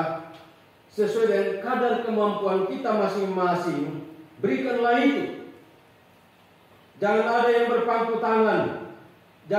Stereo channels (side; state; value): both; identical; correlation 1.00